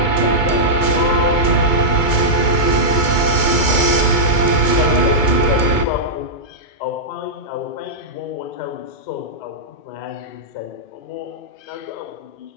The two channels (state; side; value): late; right; 2.2 ms